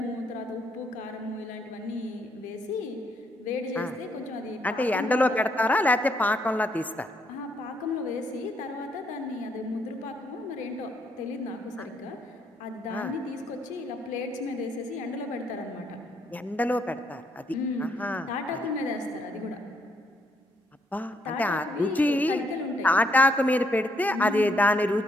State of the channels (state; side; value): normal; both; correlation 0.72